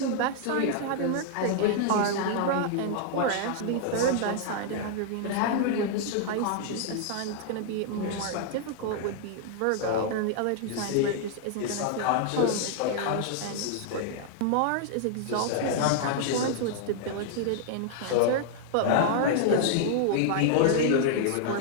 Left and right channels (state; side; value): different; both; correlation -0.01